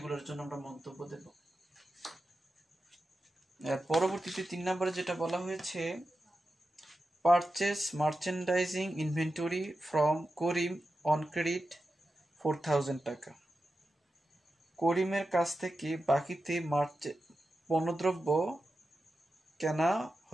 জন্য আমরা মন্তব্য দেব। পরবর্তীতে 3 নম্বরে যেটা বলা হয়েছে, purchase merchandising inventory from Karim on credit 4,000 টাকা। করিমের কাছ থেকে বাকিতে পণ্যদ্রব্য কেনা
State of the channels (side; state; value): both; normal; correlation 0.91